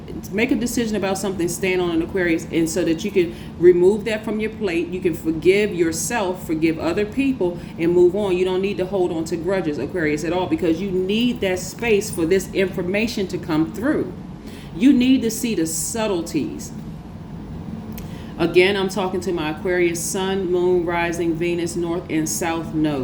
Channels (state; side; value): identical; both; correlation 1.00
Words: make a decision about something, stand on an Aquarius, and so that you can remove that from your plate. You can forgive yourself, forgive other people, and move on. You don't need to hold on to grudges, Aquarius, at all, because you need that space for this information to come through. You need to see the subtleties. Again, I'm talking to my Aquarius sun, moon, rising, Venus, north and south